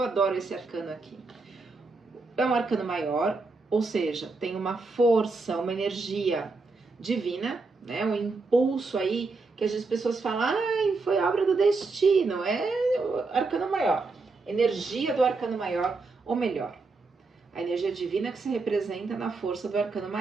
esse arcano aqui. É um arcano maior, ou seja, tem uma força, uma energia divina, né? Um impulso aí que as pessoas falam, ai, foi obra do destino. É o arcano maior, energia do arcano maior, ou melhor, a energia divina que se representa na força do arcano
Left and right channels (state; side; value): quieter; left; 3.8 dB